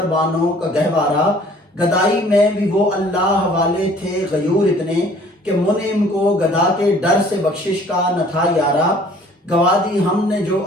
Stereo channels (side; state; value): both; normal; correlation 0.54